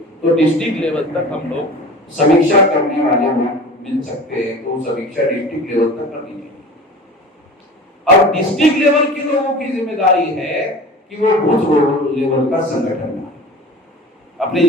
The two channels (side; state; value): both; normal; correlation 0.37